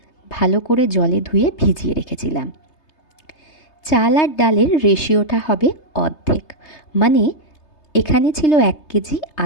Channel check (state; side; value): late; right; 3.3 ms